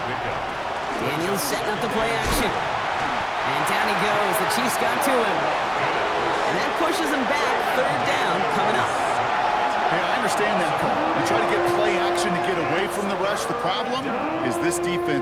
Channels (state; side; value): identical; both; correlation 1.00